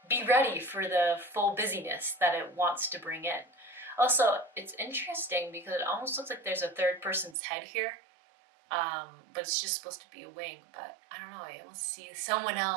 be ready for the full busyness that it wants to bring in. Also, it's interesting because it almost looks like there's a third person's head here. But it's just supposed to be a wing, but I don't know, I almost see someone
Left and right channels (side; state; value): left; drops out; at 7.4 s